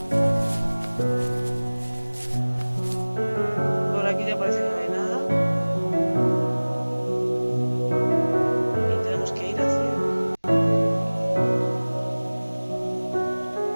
Por aquí ya parece que no hay nada. Y tenemos que ir hacia...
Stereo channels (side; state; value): both; inverted; correlation -1.00